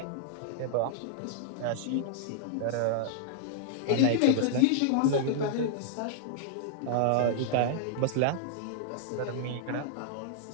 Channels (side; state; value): both; different; correlation -0.01